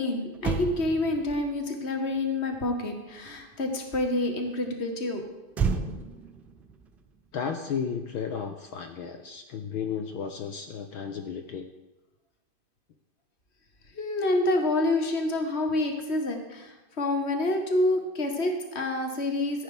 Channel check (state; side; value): late; right; 3.1 ms